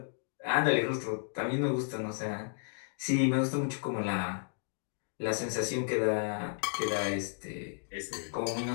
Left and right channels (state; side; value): silent; right; 56 dB below the other